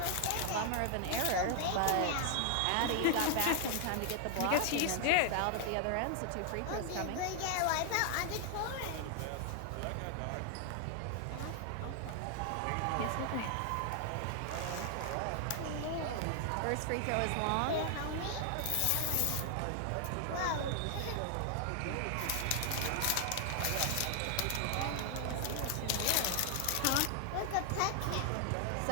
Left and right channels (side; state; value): both; different; correlation 0.00